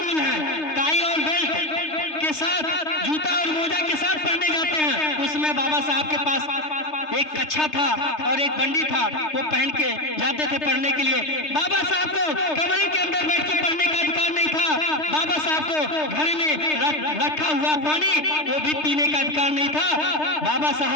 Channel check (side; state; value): right; late; 3.3 ms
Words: है, टाई और बेल्ट के साथ जूता और मोजा के साथ पढ़ने जाते हैं। उसमें बाबा साहब के पास एक कच्छा था और एक बंडी था, वो पहन के जाते थे पढ़ने के लिए। बाबा साहब को कमरे के अंदर बैठ के पढ़ने का अधिकार नहीं था। बाबा साहब को घर में रखा हुआ पानी वो भी पीने का अधिकार नहीं था। बाबा